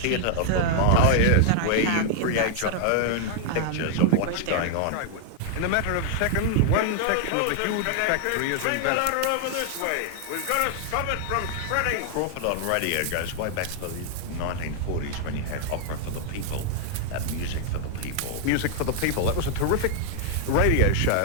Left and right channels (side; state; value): both; different; correlation 0.00